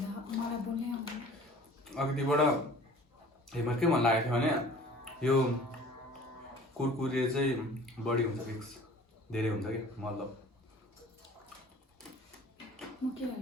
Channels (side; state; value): both; normal; correlation 0.47